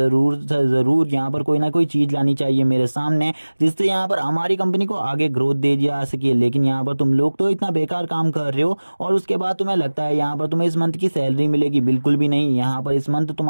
यहाँ पर कोई ना कोई चीज लानी चाहिए मेरे सामने, जिससे यहाँ पर हमारी कंपनी को आगे ग्रोथ दे जा सके। लेकिन यहाँ पर तुम लोग तो इतना बेकार काम कर रहे हो और उसके बाद तुम्हें लगता है यहाँ पर तुम्हें इस मंथ की सैलरी मिलेगी, बिल्कुल भी नहीं। यहाँ पर इस मंथ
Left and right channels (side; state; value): both; inverted; correlation -1.00